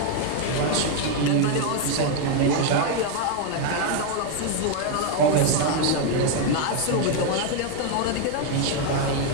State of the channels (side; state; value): both; different; correlation 0.01